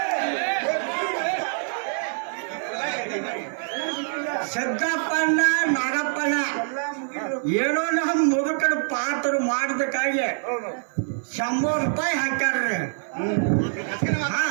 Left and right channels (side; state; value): left; silent; 62 dB below the other